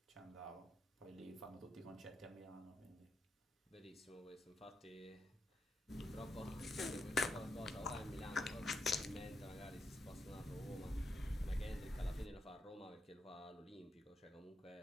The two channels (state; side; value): normal; both; correlation 0.83